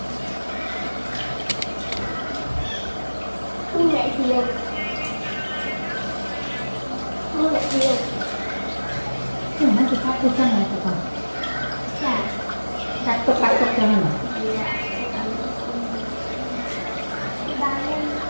Mua lại nhiều. Mua lại nhiều. Cái này thì phát cái chân này phải không? Dạ. Đặt tục cho mình à?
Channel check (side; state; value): both; inverted; correlation -1.00